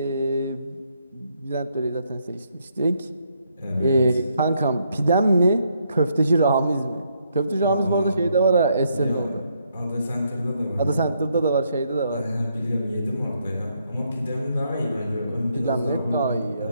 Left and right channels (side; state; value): both; inverted; correlation -0.75